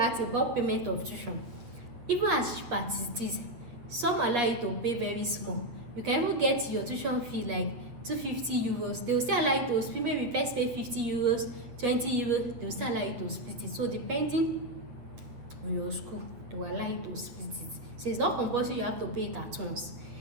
about payment of tuition. Even as cheap as it is, some allow you to pay very small. You can even get your tuition fee like 250 euros. They will still allow you to split. Maybe first pay 50 euros, 20 euros. They will still allow you to split it. So depending on your school, they will allow you to split it. So it's not compulsory you have to pay it at once.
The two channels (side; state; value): left; late; 8.2 ms